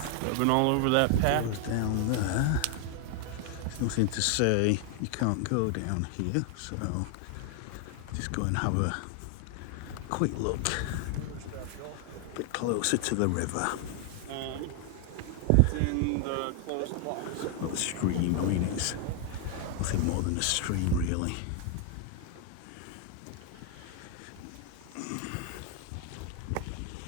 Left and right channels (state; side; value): different; both; correlation 0.00